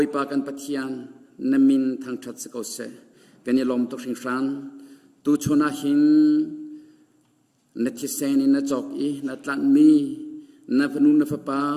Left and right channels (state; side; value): identical; both; correlation 1.00